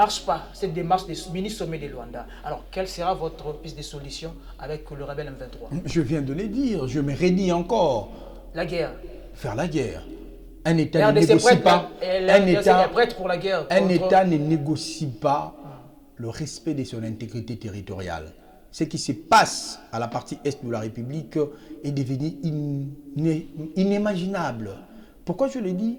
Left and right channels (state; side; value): identical; both; correlation 1.00